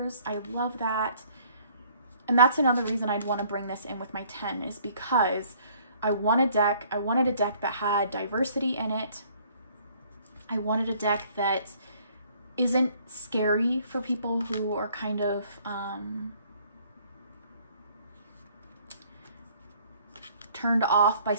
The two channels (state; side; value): inverted; both; correlation -0.59